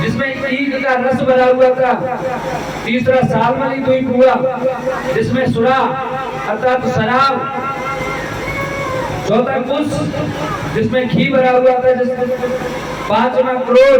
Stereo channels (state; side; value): identical; both; correlation 1.00